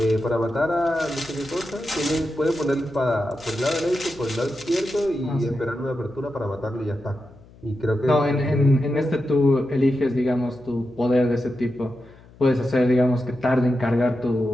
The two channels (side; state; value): left; noise; hum, 24 dB below the sound